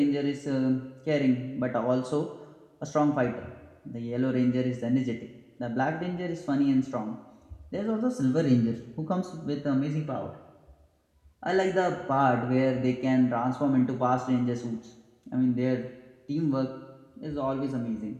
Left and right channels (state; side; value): identical; both; correlation 1.00